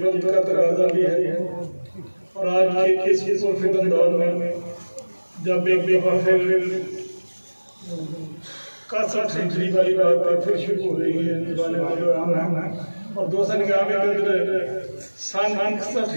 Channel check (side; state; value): both; inverted; correlation -1.00